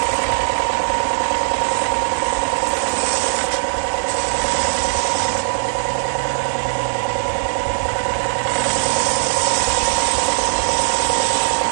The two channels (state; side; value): silent; left; 58 dB below the other